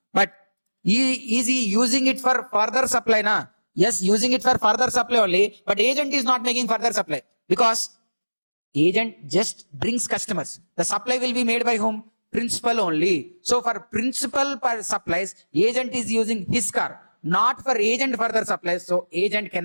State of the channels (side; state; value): both; inverted; correlation -1.00